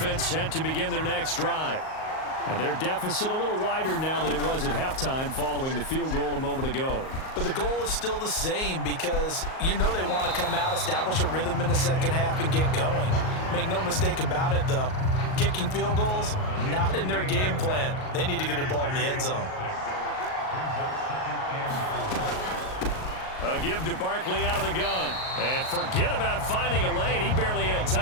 set to begin their next drive. And their deficit a little wider now than it was at halftime following the field goal a moment ago. But the goal is still the same because you know they want to come out, establish a rhythm in the second half, and get going. Make no mistake about it, though. Kicking field goals, not in their game plan. They need to get the ball in the end zone. A give to Barkley out of the gun. And forget about finding a lane. He barely had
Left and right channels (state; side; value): late; right; 38 ms